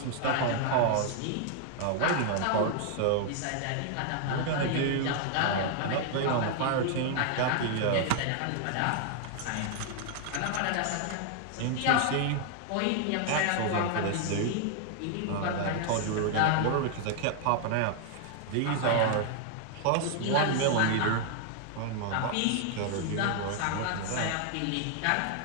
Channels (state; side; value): different; both; correlation 0.00